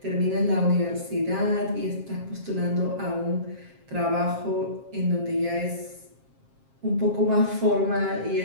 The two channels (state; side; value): late; left; 7.5 ms